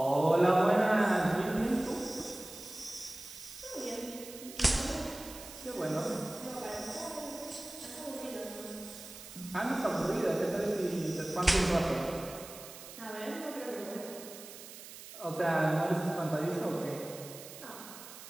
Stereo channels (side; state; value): right; noise; hiss, 14 dB below the sound